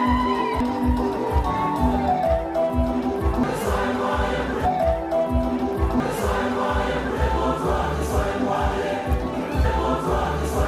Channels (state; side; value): identical; both; correlation 1.00